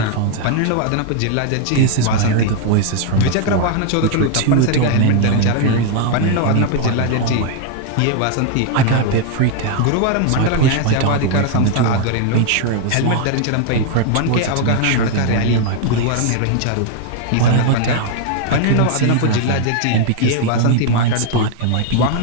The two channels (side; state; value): both; different; correlation 0.00